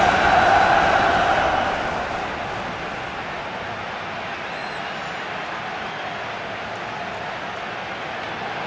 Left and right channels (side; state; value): both; identical; correlation 1.00